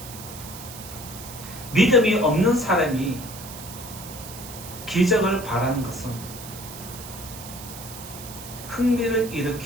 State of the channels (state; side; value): noise; right; hiss, 13 dB below the sound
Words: 믿음이 없는 사람이 기적을 바라는 것은 흥미를